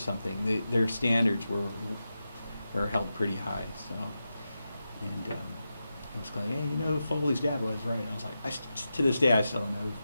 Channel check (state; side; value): inverted; both; correlation -0.90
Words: Their standards were held pretty high. So, and it was like, hey, you know who Foley's dad was, right? And I was like, to this day, I still don't know who